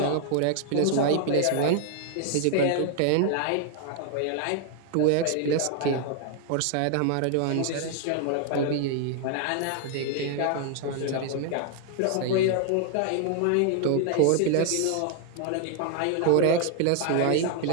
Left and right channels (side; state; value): both; different; correlation 0.00